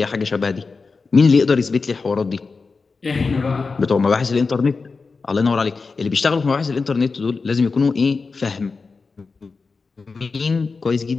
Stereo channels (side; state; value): right; quieter; 4.4 dB